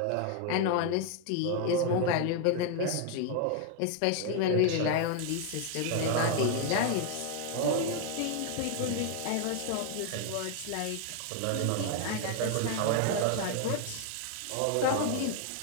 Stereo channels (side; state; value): both; different; correlation 0.00